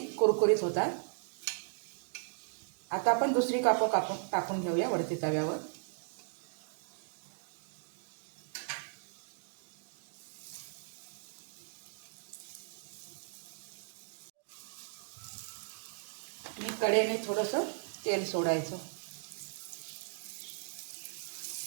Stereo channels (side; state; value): left; silent; digital silence